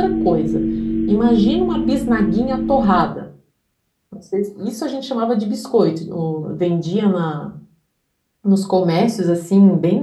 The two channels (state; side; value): identical; both; correlation 1.00